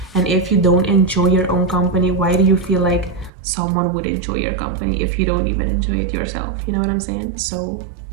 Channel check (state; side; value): drops out; left; at 3.3 s